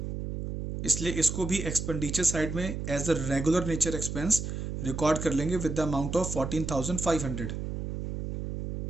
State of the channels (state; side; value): noise; right; hum, 5 dB below the sound